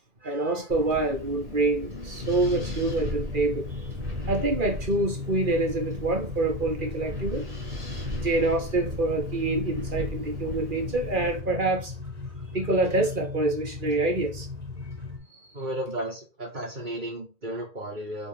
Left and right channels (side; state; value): left; late; 2.4 ms